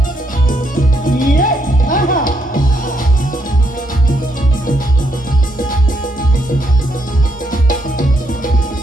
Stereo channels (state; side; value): normal; both; correlation 0.76